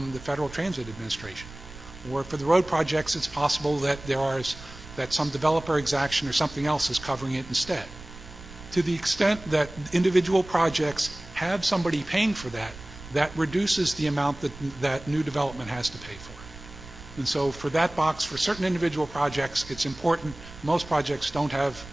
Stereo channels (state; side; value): noise; right; rumble, 16 dB below the sound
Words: the Federal Transit Administration. Or for the road projects, it's possible that some developer exaction or something else is covering it instead. To the extent that individual projects have somebody paying for that, that reduces the amount that new development has to pay for. And so for that box, for certain individual projects, it's important. Most projects don't have